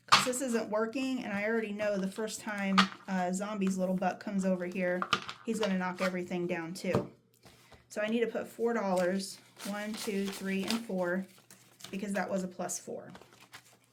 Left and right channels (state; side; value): identical; both; correlation 1.00